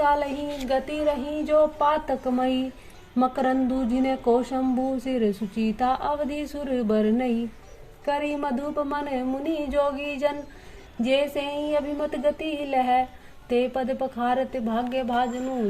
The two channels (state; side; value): identical; both; correlation 1.00